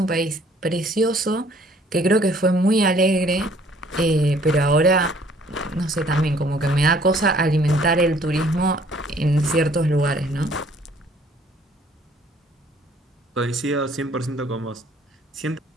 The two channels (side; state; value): both; normal; correlation 0.59